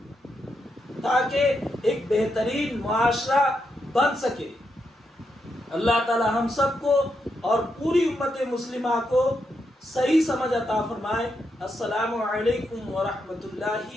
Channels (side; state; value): both; normal; correlation 0.82